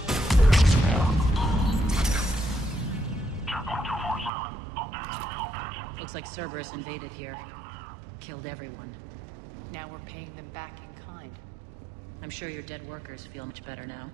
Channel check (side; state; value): left; drops out; at 4.3 s